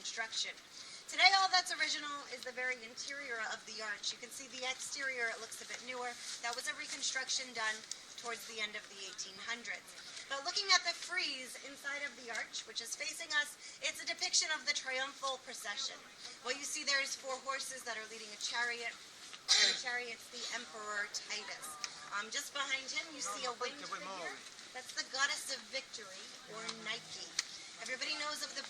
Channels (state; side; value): identical; both; correlation 1.00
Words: Today all that's original is the very interior of the arch. You can see the exterior, it looks a bit newer. That was a reconstruction done towards the end of the 1800s. But looking at the frieze inside of the arch, which is facing us, it's a depiction of the triumphal procession. What you see there is 4 horses that are leading a chariot. The chariot's the Emperor Titus. Just behind him, you see a winged figure. That's the goddess of victory, or Nike. Everybody knows of the